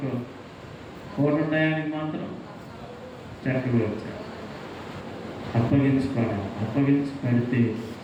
కోట టయానికి మాత్రం చక్కగా వచ్చారు. అప్పగించుకోవాలి.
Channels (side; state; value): both; identical; correlation 1.00